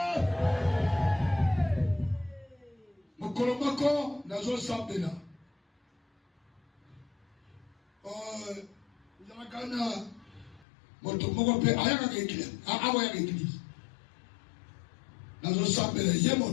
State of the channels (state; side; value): drops out; right; at 10.7 s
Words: mokolo moko nazosambela kana moto moko pe ayaka église awa église nazo sambela ye